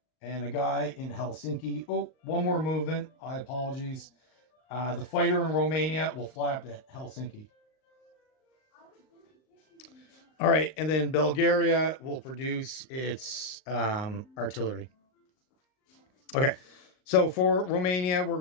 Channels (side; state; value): right; late; 38 ms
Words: and a guy in Helsinki. Oh, one more movement. I apologize. The fighter in Romania will fly up to Helsinki. All right, and then Bulgaria will produce its artillery. Okay, so for Romania, we're